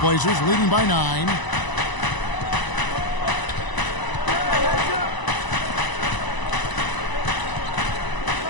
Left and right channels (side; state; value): right; late; 1.0 ms